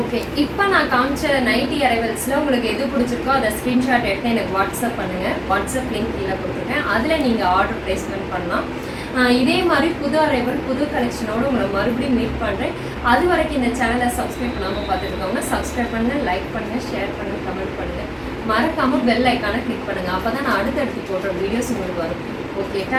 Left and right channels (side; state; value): both; identical; correlation 1.00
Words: இப்போ நான் காமிச்ச நைட்டி அரைவல்ஸில் உங்களுக்கு எது பிடிச்சிருக்கோ அதை ஸ்க்ரீன்ஷாட் எடுத்து எனக்கு வாட்ஸ்அப் பண்ணுங்கள். வாட்ஸ்அப் லிங்க் கீழே கொடுத்துருக்கேன், அதில் நீங்கள் ஆர்டர் ப்ளேஸ்மெண்ட் பண்ணலாம். இதே மாதிரி புது அரைவல் புது கலெக்ஷனோடு உங்களை மறுபடியும் மீட் பண்ணுறேன். அது வரைக்கும் இந்த சேனலை சப்ஸ்கிரைப் பண்ணாமல் பார்த்துருக்கோங்க. சப்ஸ்கிரைப் பண்ணுங்கள், லைக் பண்ணுங்கள், ஷேர் பண்ணுங்கள், கமெண்ட் பண்ணுங்கள். மறக்காமல் பெல் ஐக்கானை கிளிக் பண்ணுங்கள். அப்போ தான் நான் அடுத்தடுத்து போடுற வீடியோஸ் உங்களுக்கு வரும். ஓகே,